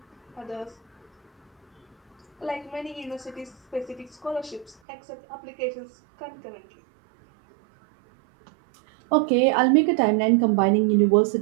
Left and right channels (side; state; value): left; drops out; at 4.8 s